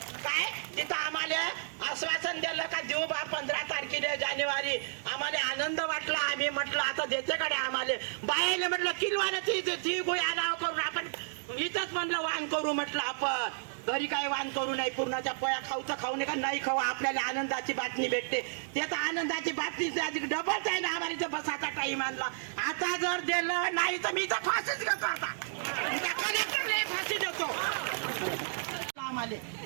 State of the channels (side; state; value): left; silent; digital silence